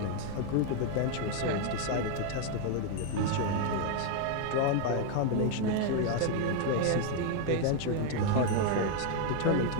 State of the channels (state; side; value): different; both; correlation 0.00